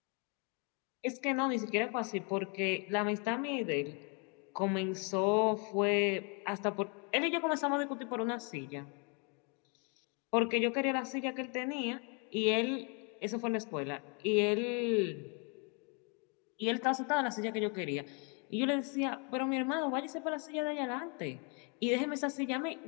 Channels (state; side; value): quieter; right; 35.6 dB